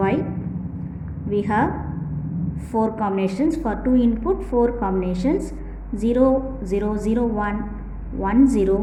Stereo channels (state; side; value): identical; both; correlation 1.00